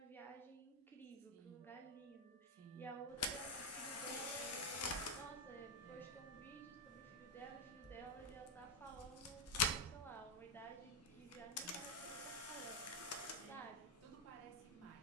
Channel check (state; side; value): normal; both; correlation 0.07